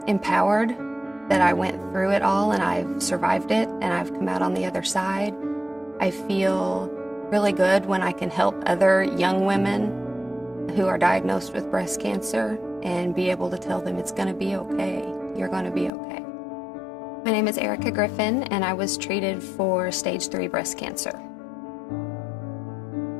empowered that I went through it all and I've survived it and I've come out on the other side. I feel really good when I can help other young women who are diagnosed with breast cancer and be able to tell them it's going to be okay. You're going to be okay. My name is Erica Griffin, and I was treated for stage 3 breast cancer.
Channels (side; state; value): right; drops out; at 15.9 s